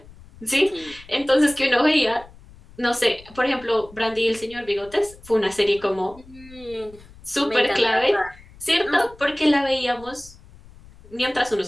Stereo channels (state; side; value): noise; left; rumble, 22 dB below the sound